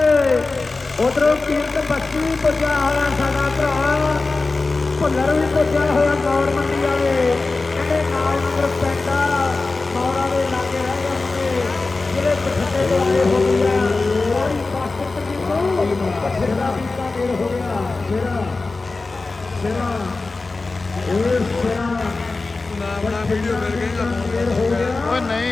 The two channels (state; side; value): quieter; right; 3.6 dB